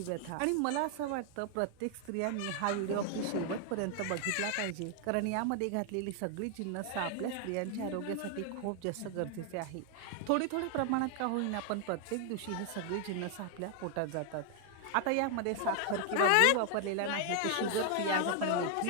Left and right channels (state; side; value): different; both; correlation 0.00